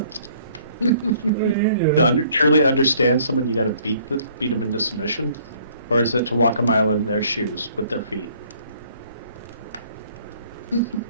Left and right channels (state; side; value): inverted; both; correlation -0.59